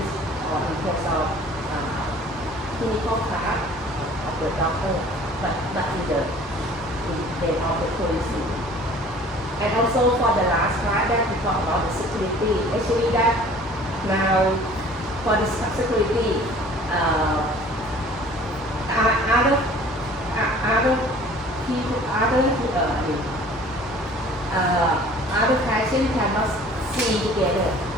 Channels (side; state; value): both; normal; correlation 0.49